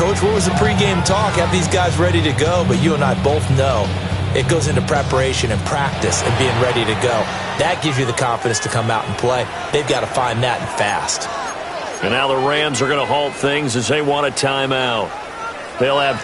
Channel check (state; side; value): identical; both; correlation 1.00